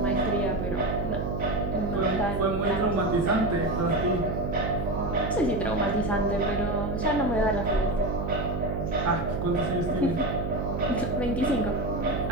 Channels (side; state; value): right; noise; hum, 3 dB below the sound